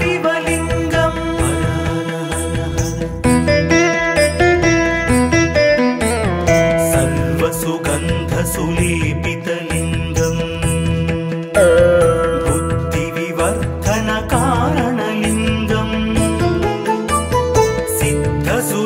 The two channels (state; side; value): identical; both; correlation 1.00